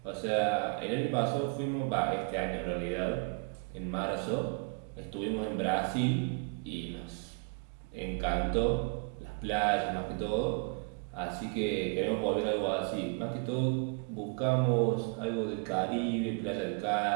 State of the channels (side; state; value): left; quieter; 37.9 dB